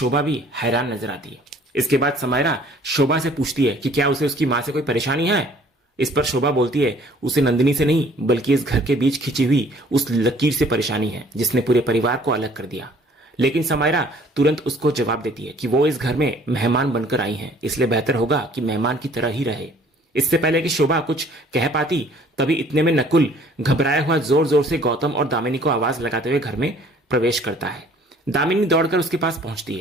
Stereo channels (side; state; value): both; normal; correlation 0.55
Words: भी हैरान नजर आती है। इसके बाद समायरा शोभा से पूछती है कि क्या उसे उसकी मां से कोई परेशानी है। इस पर शोभा बोलती है उसे नंदिनी से नहीं बल्कि इस घर के बीच खिंची हुई उस लकीर से परेशानी है जिसने पूरे परिवार को अलग कर दिया। लेकिन समायरा तुरंत उसको जवाब देती है कि वो इस घर में मेहमान बनकर आई हैं, इसलिए बेहतर होगा कि मेहमान की तरह ही रहे। इससे पहले कि शोभा कुछ कह पाती, तभी इतने में नकुल घबराया हुआ जोर जोर से गौतम और दामिनी को आवाज लगाते हुए घर में प्रवेश करता है। दामिनी दौड़कर उसके पास पहुंचती